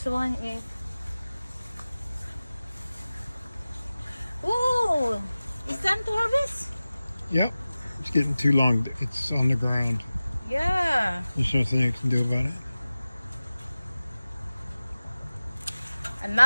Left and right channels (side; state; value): both; inverted; correlation -0.96